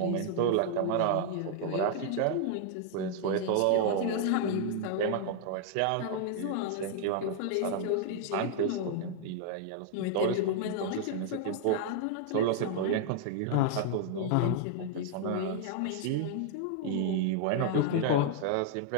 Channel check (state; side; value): different; both; correlation -0.01